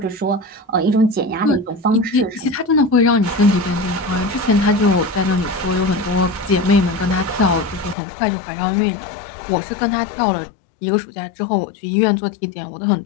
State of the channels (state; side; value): drops out; right; at 8.0 s